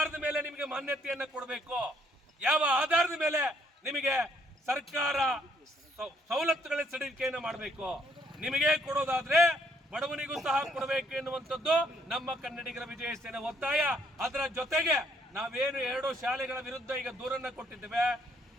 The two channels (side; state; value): both; normal; correlation 0.68